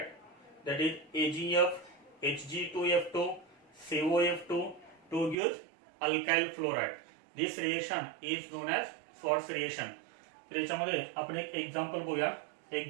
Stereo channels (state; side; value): drops out; left; at 5.4 s